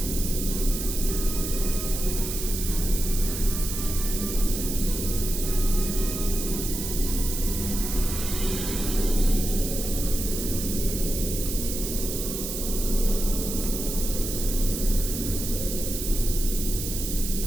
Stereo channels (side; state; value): right; noise; hiss, 5 dB below the sound